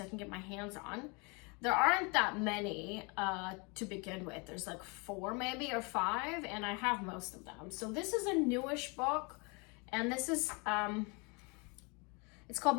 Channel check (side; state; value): right; quieter; 30.7 dB